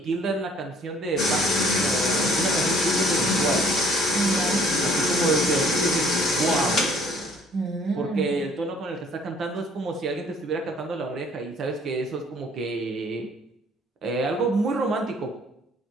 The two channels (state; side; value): normal; both; correlation 0.58